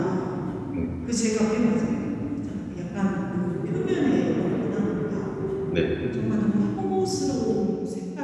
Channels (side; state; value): both; identical; correlation 1.00